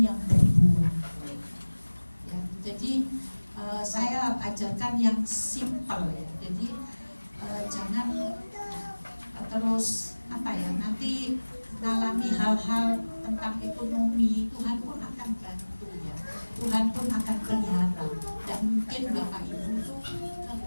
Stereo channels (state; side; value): inverted; both; correlation -1.00